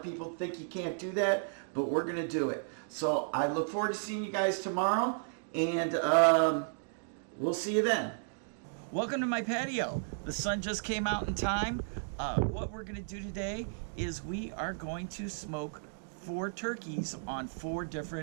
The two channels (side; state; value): left; silent; digital silence